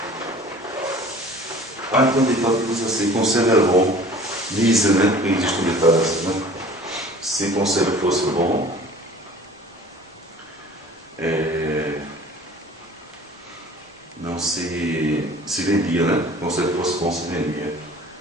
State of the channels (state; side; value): normal; both; correlation 0.47